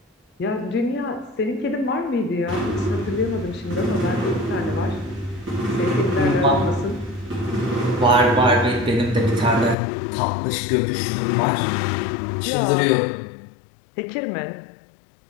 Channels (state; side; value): drops out; right; at 9.8 s